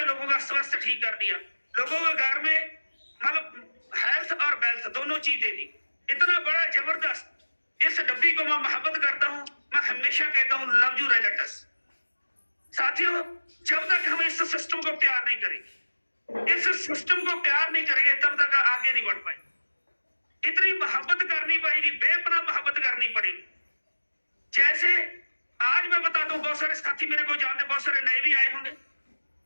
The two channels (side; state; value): both; inverted; correlation -1.00